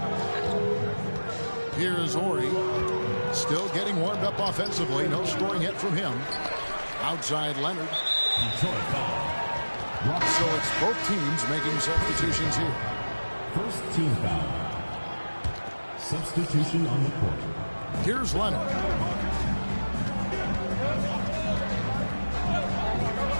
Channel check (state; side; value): inverted; both; correlation -1.00